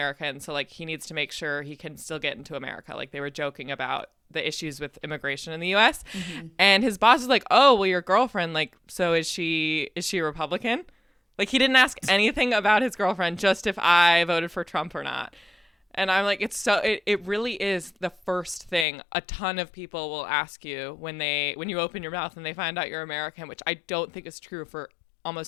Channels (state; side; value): drops out; right; at 18.9 s